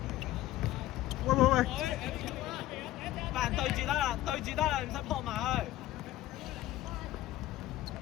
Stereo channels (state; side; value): quieter; right; 14.9 dB